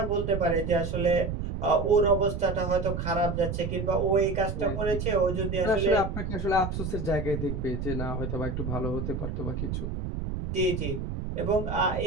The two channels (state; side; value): noise; right; rumble, 4 dB below the sound